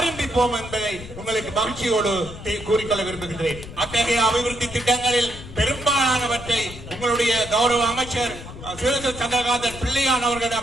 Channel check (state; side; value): noise; left; rumble, 13 dB below the sound